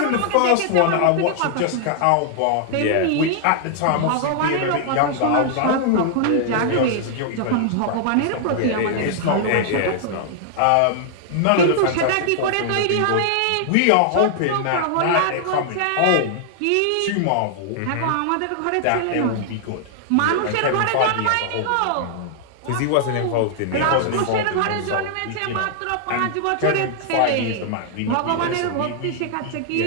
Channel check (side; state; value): both; different; correlation -0.01